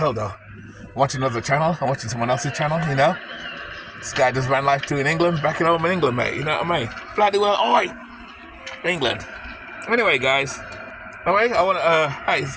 though. I'm watching another channel. I'm watching someone else's channel, you know. This guy does van life too in England, back at home in England, mate. You know what I mean? Bloody well, oi! England. Anyway, guys. Anyway, I want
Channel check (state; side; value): identical; both; correlation 1.00